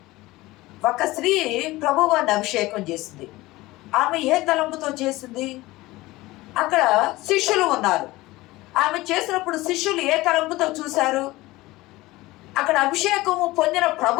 ఒక స్త్రీ ప్రభువాన్ని అభిషేకం చేసింది. ఆమె ఏ తలంపుతో చేసింది? అక్కడ శిష్యులు ఉన్నారు. ఆమె చేసినప్పుడు శిష్యులు ఏ తలంపుతో చూశారు? అక్కడ అభిషేకము పొందిన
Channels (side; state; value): right; quieter; 19.3 dB